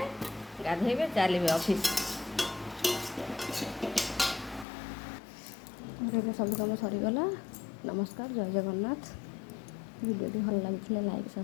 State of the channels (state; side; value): drops out; right; at 4.7 s